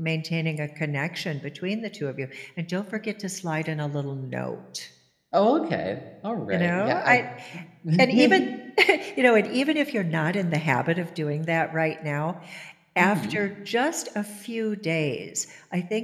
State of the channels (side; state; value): both; identical; correlation 1.00